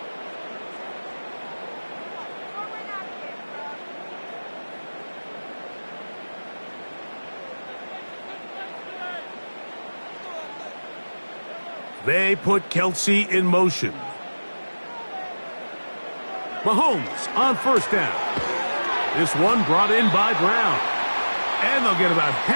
They put Kelsey in motion. Mahomes on 1st down. This one brought in by Brown. And they'll get about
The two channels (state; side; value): inverted; both; correlation -1.00